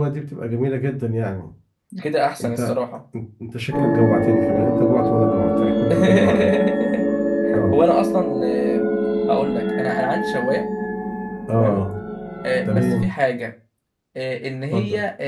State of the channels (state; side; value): identical; both; correlation 1.00